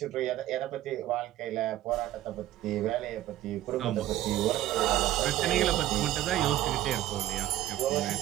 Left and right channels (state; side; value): quieter; left; 13.8 dB